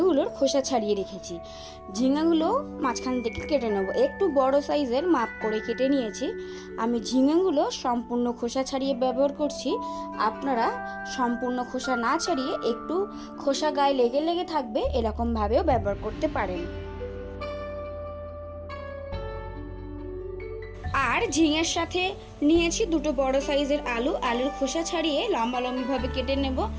খোসা ছাড়িয়ে রেখেছি। ঝিঙেগুলো মাঝখান থেকে কেটে নেব। একটু বড় সাইজের মাপ করে কেটে নিয়েছি। আমি ঝিঙেগুলো সম্পূর্ণ খোসা ছাড়িয়ে ব্যবহার করছি। আপনারা সম্পূর্ণ খোসা না ছাড়িয়ে একটু খোসা গায়ে লেগে লেগে থাকবে এরকমভাবেও ব্যবহার করতে পারেন। আর ঝিঙের সাথে নিয়েছি দুটো বড় সাইজের আলুর খোসা ছাড়িয়ে লম্বা লম্বিভাবে কেটে নেব।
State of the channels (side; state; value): both; identical; correlation 1.00